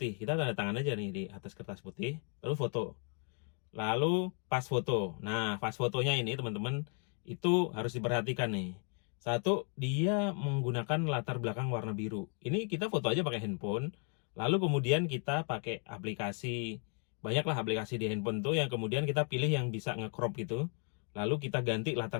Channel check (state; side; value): quieter; right; 39.4 dB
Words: kita tanda tangan aja nih di atas kertas putih, lalu foto. Lalu pas foto. Nah pas fotonya ini teman-teman itu harus diperhatikan nih. Satu, dia menggunakan latar belakang warna biru. Ini kita foto aja pakai handphone, lalu kemudian kita pakai aplikasi. Banyaklah aplikasi di handphone tuh yang kemudian kita pilih yang bisa nge-crop gitu. Lalu kita ganti